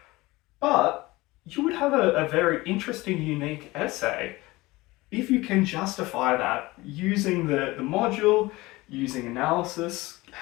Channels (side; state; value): right; quieter; 20.7 dB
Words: but you would have a very interesting, unique essay if you can justify that using the module, using analysis,